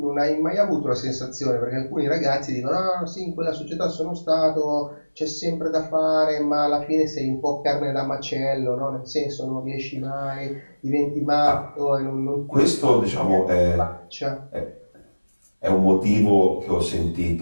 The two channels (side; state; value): both; inverted; correlation -1.00